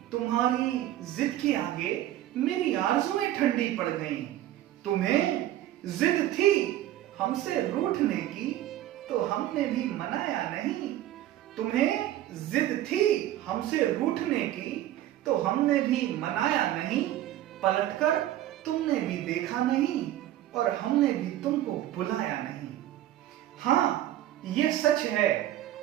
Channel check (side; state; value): left; quieter; 13.4 dB